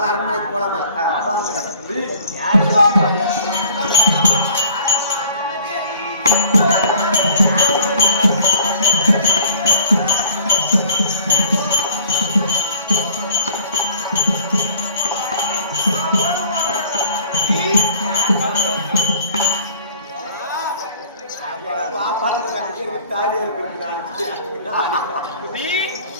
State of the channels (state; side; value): inverted; both; correlation -0.52